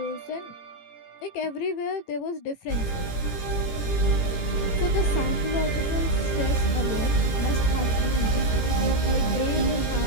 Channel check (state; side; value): late; right; 18 ms